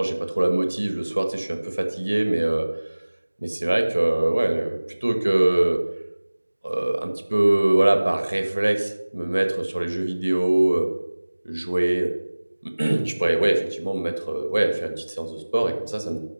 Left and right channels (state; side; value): inverted; both; correlation -1.00